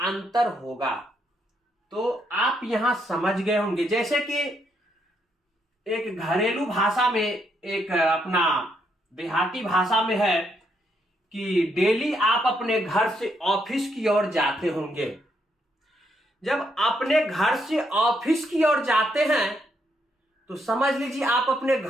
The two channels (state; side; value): normal; both; correlation 0.76